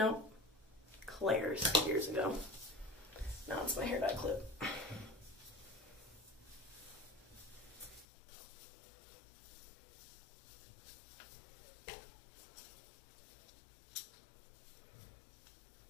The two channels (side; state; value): right; drops out; at 8.1 s